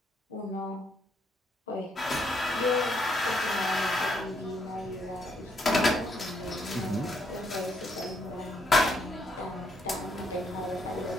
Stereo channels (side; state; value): both; normal; correlation 0.73